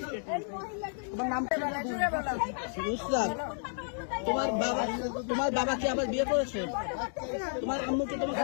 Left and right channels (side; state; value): right; silent; 57 dB below the other